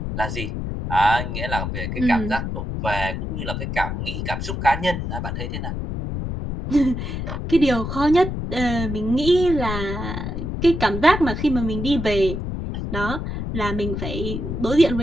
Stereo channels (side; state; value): left; noise; rumble, 4 dB below the sound